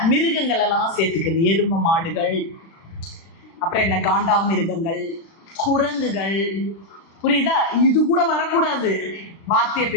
மிருகங்கள் எல்லாம் சேர்த்துக்குது, எரும மாடுகள், அப்புறம் என்ன காண்டா மிருகங்கள், குரங்குகள், புரியுதா? இது கூட வரக்கூடாது வார்த்தையை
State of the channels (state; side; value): late; right; 36 ms